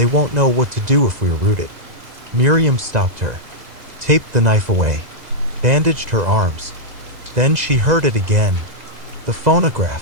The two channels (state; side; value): late; left; 2.0 ms